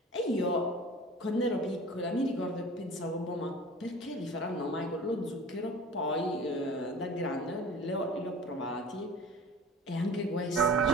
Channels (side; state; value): both; normal; correlation 0.40